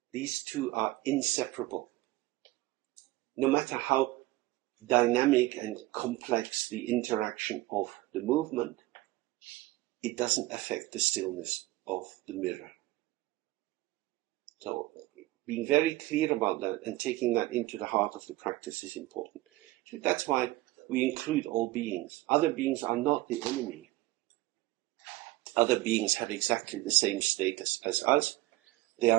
These two are inseparable. No matter how dynamic and complex the interaction of the movement, it doesn't affect the stillness of the mirror. So being very clear about that and taking that into the heart of the practice is important. So that's why we include all beings. Other beings are not the enemy. Other beings have exactly the same status as us. They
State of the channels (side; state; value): left; quieter; 18.3 dB